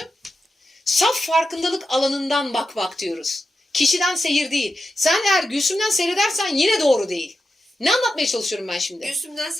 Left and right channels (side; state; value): both; normal; correlation 0.89